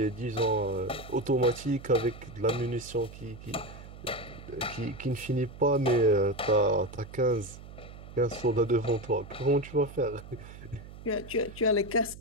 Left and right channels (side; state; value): right; noise; hum, 15 dB below the sound